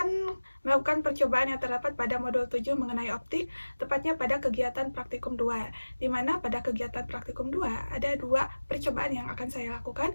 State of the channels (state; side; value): inverted; both; correlation -1.00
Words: melakukan percobaan yang terdapat pada modul 7 mengenai optik, tepatnya pada kegiatan praktikum 2, di mana pada kegiatan praktikum 2 ada dua percobaan yang akan saya